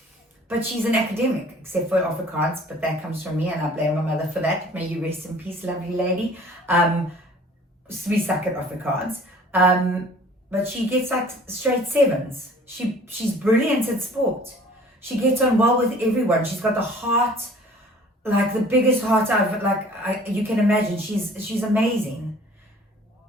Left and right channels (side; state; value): both; normal; correlation 0.50